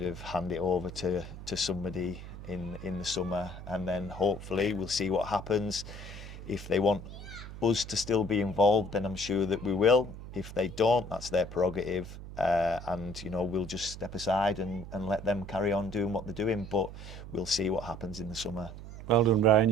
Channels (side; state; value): right; noise; hum, 12 dB below the sound